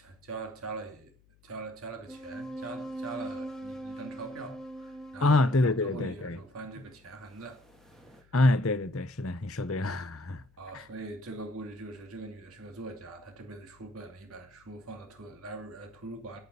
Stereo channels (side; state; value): left; noise; hum, 30 dB below the sound